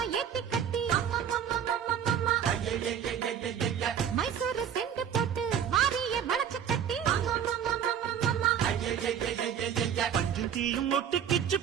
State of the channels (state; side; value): quieter; left; 8.7 dB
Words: ஏத்தி கட்டி மைசூரு செண்டு போட்டு மாறிய வளச்சு கட்டி பஞ்சும் தீயும் ஒட்டு கிச்சு